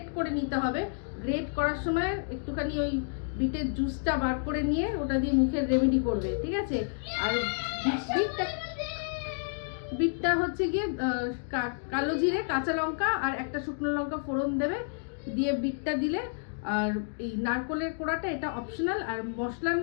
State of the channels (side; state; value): right; silent; digital silence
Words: করে নিতে হবে। গ্রেট করার সময় একটুখানি ওই বিটের জুসটা বার করে নিয়ে ওটা দিয়ে মুখের রেমেডি করবে, ঠিক আছে। আর বিটটা হচ্ছে গিয়ে কালো জিরে, কাঁচা লঙ্কা আর একটা শুকনো লঙ্কা ফোড়ন দেবে, দিয়ে বিটটা দিলে। আর এই নারকলের কোড়াটা এটা অপশনাল। আর মশলার